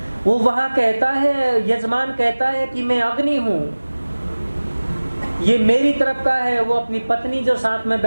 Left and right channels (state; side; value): inverted; both; correlation -1.00